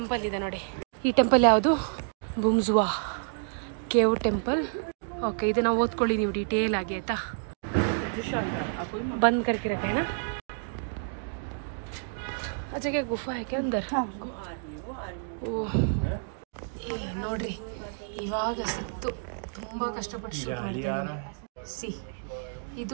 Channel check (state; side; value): silent; left; digital silence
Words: ಇದೆ ನೋಡಿ. ಈ ಟೆಂಪಲ್ ಯಾವುದು? ಬುಮ್ಜುವಾ ಕೇವ್ ಟೆಂಪಲ್. ಓಕೆ, ಇದನ್ನ ಓದ್ಕೊಳ್ಳಿ ನೀವು ಡೀಟೇಲ್ ಆಗಿ, ಆಯ್ತಾ? ಬಂದ್ करके रखा है ना. अच्छा क्या गुफा है क्या अंदर? ಓಹ್, ನೋಡ್ರಿ ಇವಾಗ ಸಿಕ್ತು. ತುಂಬಾ ಕಷ್ಟಪಟ್ಟು ಶೂಟ್ ಮಾಡ್ತಿದ್ದೀನಿ. ಸಿ